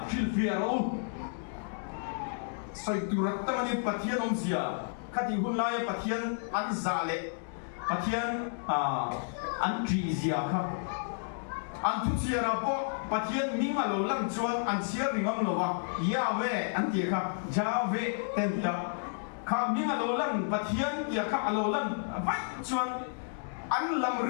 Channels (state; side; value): silent; right; digital silence